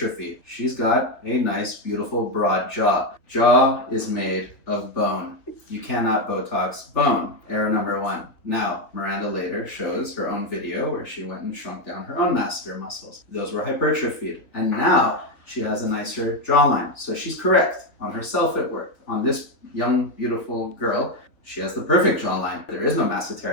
She's got a nice, beautiful, broad jaw. Jaw is made of bone. You cannot Botox bone. Error number 1. Now, Miranda later shows her own video where she went and shrunk down her own masseter muscles. Those were hypertrophied. And now she has a nicer jawline. So she's correct. On herself it worked. On this young, beautiful girl, she has the perfect jawline. There is no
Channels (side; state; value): right; late; 3.1 ms